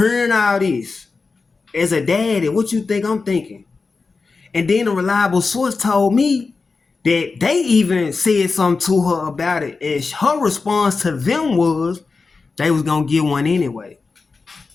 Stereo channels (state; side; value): quieter; right; 4.3 dB